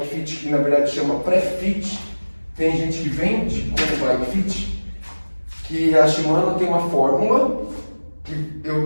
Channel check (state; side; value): inverted; both; correlation -1.00